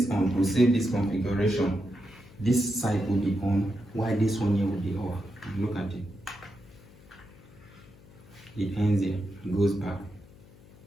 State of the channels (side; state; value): left; noise; hum, 23 dB below the sound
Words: on to save this configuration, this side will be on, while this one here will be off. Look at it. It ends here, goes back,